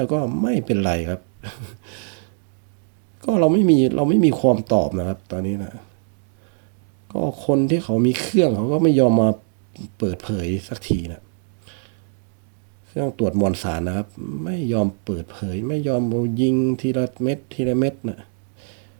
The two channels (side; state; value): left; silent; 56 dB below the other